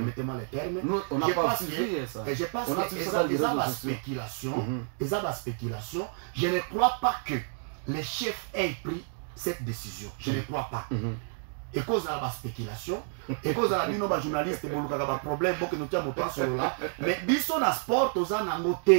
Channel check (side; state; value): left; silent; 58 dB below the other